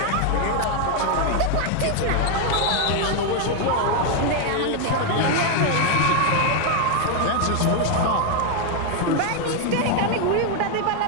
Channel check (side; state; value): both; different; correlation 0.01